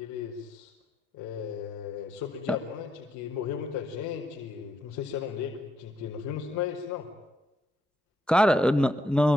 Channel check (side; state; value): both; normal; correlation 0.77